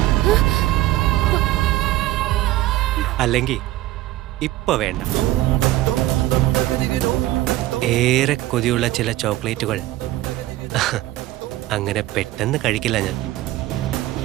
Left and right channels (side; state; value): left; quieter; 16.0 dB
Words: അല്ലെങ്കിൽ ഇപ്പൊ വേണ്ട. ഏറെ കൊതിയുള്ള ചില ചോക്ലേറ്റുകൾ അങ്ങനെ പെട്ടെന്ന് കഴിക്കില്ല ഞാൻ.